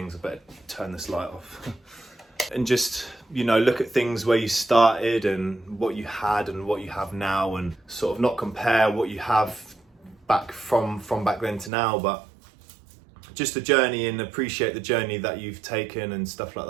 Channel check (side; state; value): left; drops out; at 11.7 s